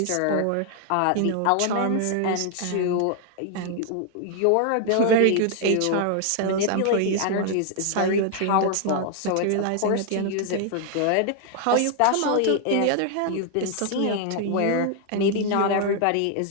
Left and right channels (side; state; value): both; different; correlation 0.00